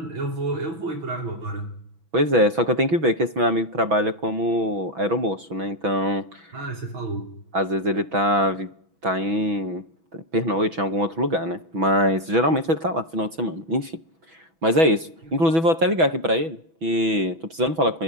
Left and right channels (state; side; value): late; left; 6.1 ms